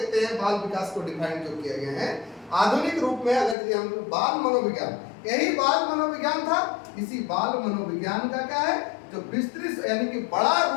हैं बाल विकास को डिफाइन जो किए गए हैं आधुनिक रूप में, अगर यदि हम लोग बाल मनोविज्ञान, यही बाल मनोविज्ञान था। इसी बाल मनोविज्ञान का क्या है जो विस्तृत यानी कि बड़ा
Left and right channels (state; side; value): drops out; right; at 3.6 s